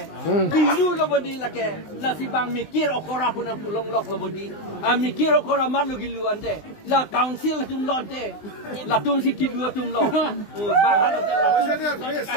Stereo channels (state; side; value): late; right; 19 ms